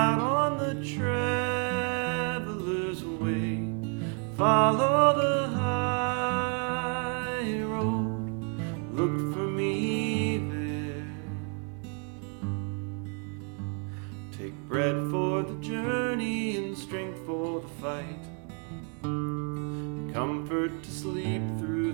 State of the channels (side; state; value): left; quieter; 40.0 dB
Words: on the traveler's way, follow the high road, look for me there. Take bread for the journey and strength for the fight, comfort to sleep through